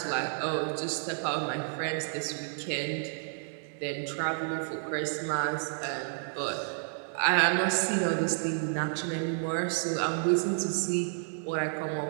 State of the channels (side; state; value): left; silent; digital silence